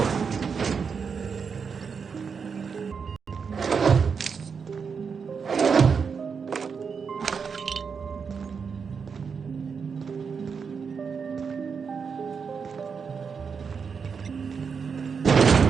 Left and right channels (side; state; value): left; quieter; 6.0 dB